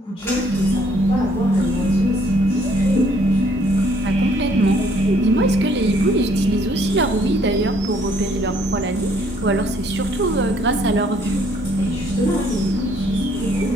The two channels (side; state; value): both; normal; correlation 0.64